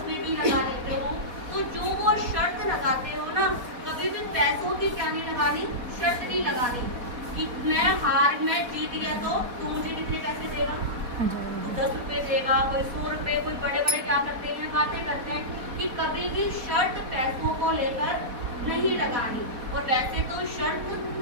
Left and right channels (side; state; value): left; late; 4.1 ms